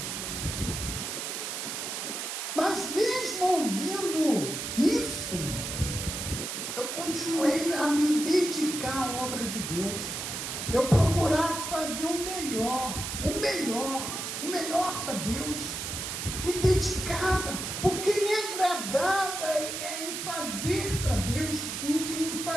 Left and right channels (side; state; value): right; noise; hiss, 4 dB below the sound